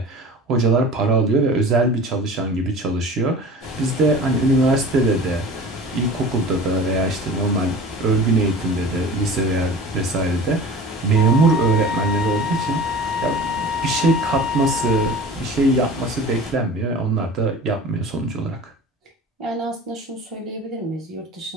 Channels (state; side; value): normal; both; correlation 0.38